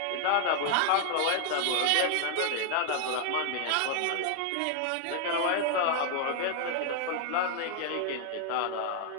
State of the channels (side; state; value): both; different; correlation 0.00